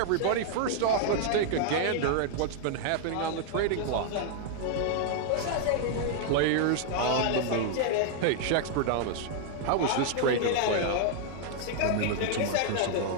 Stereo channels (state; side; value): different; both; correlation -0.01